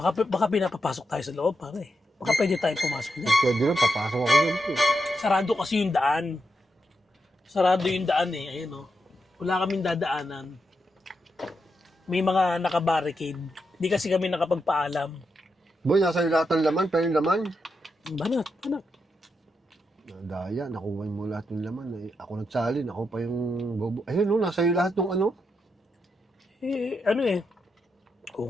Baka pinapapasok tayo sa loob, pare. Baka pwede tayong pumasok niya. Pwede lang, papasok ako dyan, boy. Sarado kasi yung daan. Sarado yung daan eh. Ayun, oh. Wala kaming dadaanan. May mga nakabarricade. Hindi kasi kami nakapagpaalam. Boy, nasa iyo lahat ng laman, pero yung laman. Banat. Daya, nakuha mo lahat ng laman. Eh, ako nagsalin, ako pa yung bobo. Ayun, no, nasa iyo lahat ng ano. Eh, ano eh. Kung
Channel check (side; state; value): both; normal; correlation 0.84